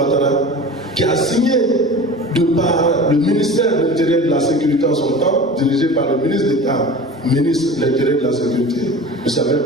qui a signé de par le ministère de l'Intérieur et de la Sécurité en son temps, dirigé par le ministre d'État, ministre de l'Intérieur et de la Sécurité, M.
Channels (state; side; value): normal; both; correlation 0.37